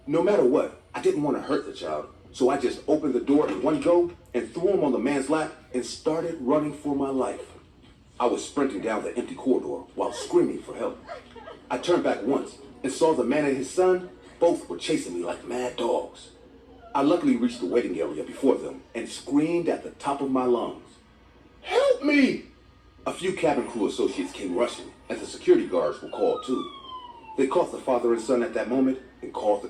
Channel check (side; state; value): both; identical; correlation 1.00